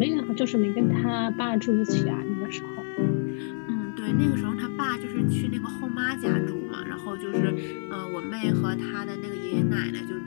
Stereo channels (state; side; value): silent; right; 57 dB below the other